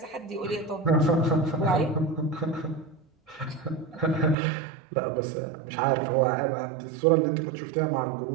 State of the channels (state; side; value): drops out; left; at 4.4 s